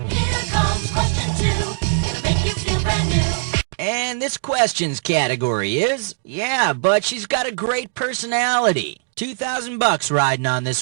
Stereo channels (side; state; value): left; silent; digital silence